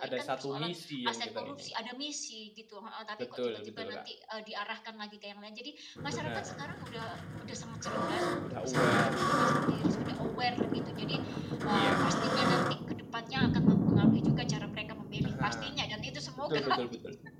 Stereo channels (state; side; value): identical; both; correlation 1.00